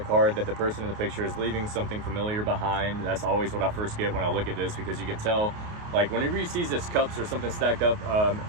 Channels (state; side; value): late; left; 28 ms